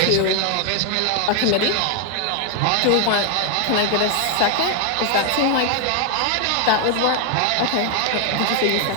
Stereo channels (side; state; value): both; different; correlation 0.00